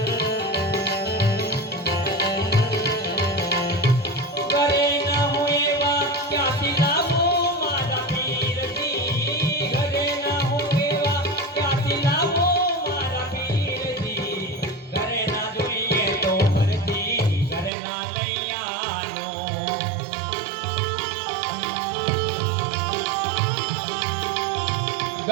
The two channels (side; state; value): left; drops out; at 17.7 s